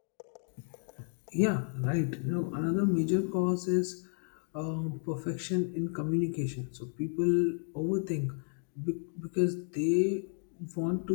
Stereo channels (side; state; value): right; silent; 56 dB below the other